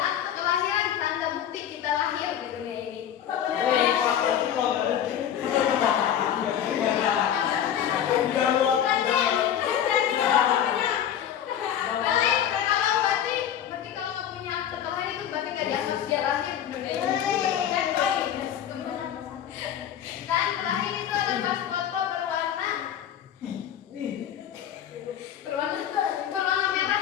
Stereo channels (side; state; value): right; quieter; 9.9 dB